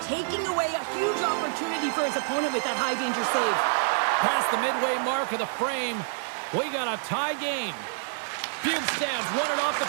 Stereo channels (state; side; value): silent; left; 58 dB below the other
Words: taking away a huge opportunity for his opponent with that high-danger save. Past the midway mark of the frame, we got a tie game. Bjugstad's won it off the